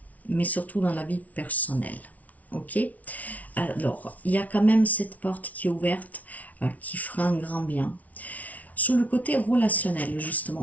mais surtout dans la vie personnelle. Ok, alors il y a quand même cette porte qui est ouverte, qui fera un grand bien. Sur le côté relationnel,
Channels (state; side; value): late; right; 0.071 ms